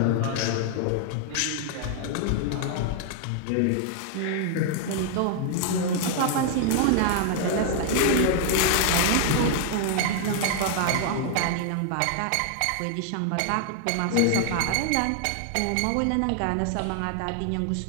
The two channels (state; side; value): different; both; correlation 0.00